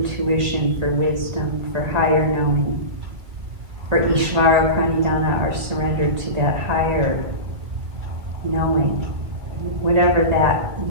for wisdom, for higher knowing, for Ishvara Pranidhana, our surrender to that higher knowing, whatever that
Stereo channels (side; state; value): left; late; 2.1 ms